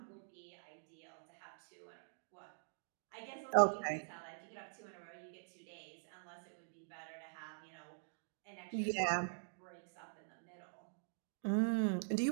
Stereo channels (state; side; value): silent; left; digital silence